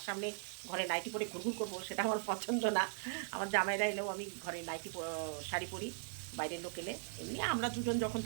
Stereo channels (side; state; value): left; silent; digital silence